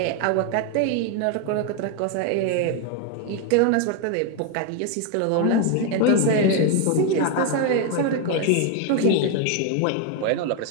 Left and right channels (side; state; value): both; different; correlation 0.01